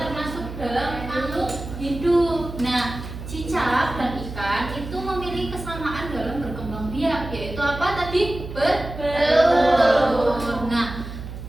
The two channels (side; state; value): right; noise; hum, 10 dB below the sound